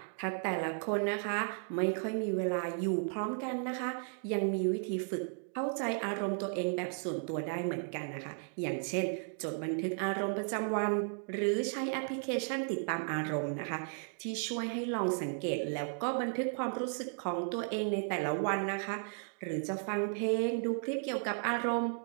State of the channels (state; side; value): silent; left; 55 dB below the other